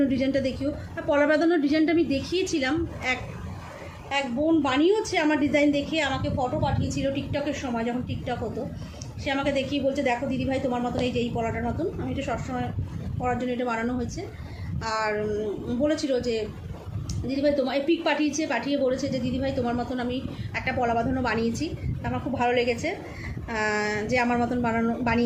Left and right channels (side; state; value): both; identical; correlation 1.00